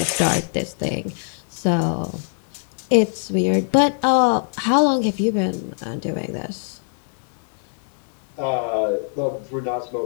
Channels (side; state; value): right; silent; 64 dB below the other